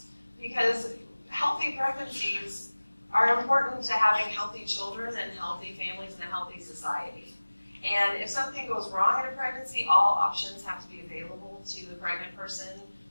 because healthy pregnancies are important to having healthy children and healthy families and a healthy society. And if something goes wrong in a pregnancy, all options have to be available to the pregnant person,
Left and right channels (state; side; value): inverted; both; correlation -1.00